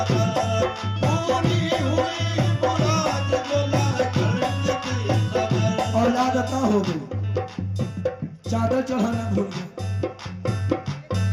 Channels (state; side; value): identical; both; correlation 1.00